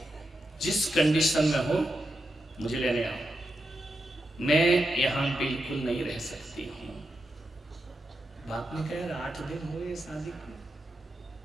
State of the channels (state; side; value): normal; both; correlation 0.86